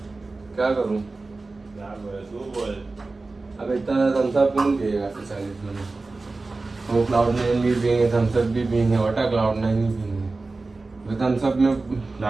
क्या करूं? अब इतना थम्स अप कौन पिएगा 40 में? वो क्लाउड नाइन भी पिएंगे, थम्स अप भी पिएंगे, वाटर क्लाउड नाइन भी पिएंगे. थम्स अप में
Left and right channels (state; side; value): quieter; left; 3.5 dB